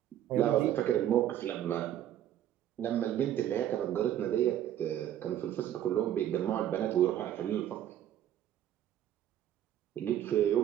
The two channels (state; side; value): quieter; left; 11.3 dB